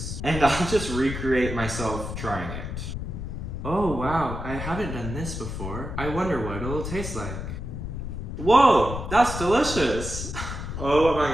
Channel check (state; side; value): noise; left; rumble, 6 dB below the sound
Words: And I'll just recreate myself trying it. Oh wow, I haven't done this before. I wonder what it'll taste like. Whoa, that's delicious. Oh my